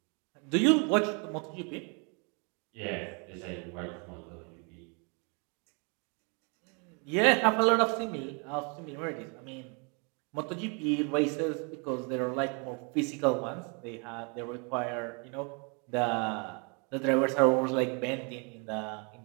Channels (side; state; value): left; quieter; 34.7 dB